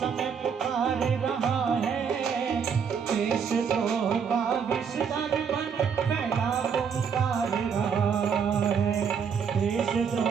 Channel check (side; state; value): left; quieter; 6.7 dB